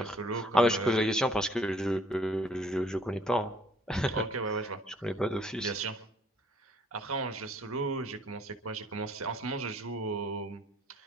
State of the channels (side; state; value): both; normal; correlation 0.60